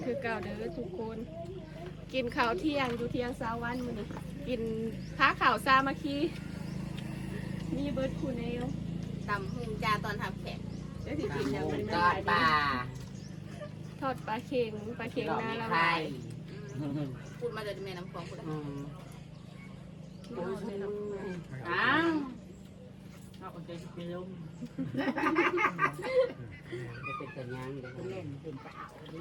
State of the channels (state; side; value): identical; both; correlation 1.00